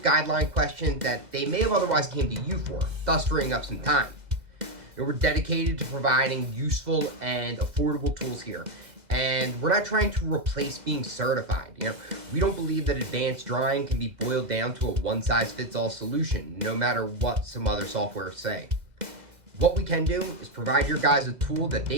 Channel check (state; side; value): late; left; 2.0 ms